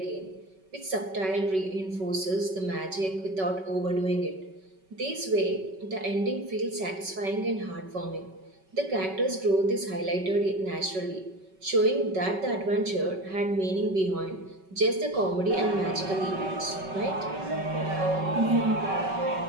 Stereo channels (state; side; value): late; left; 5.3 ms